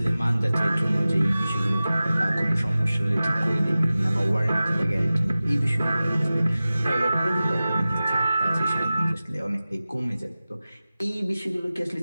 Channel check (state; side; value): inverted; both; correlation -0.96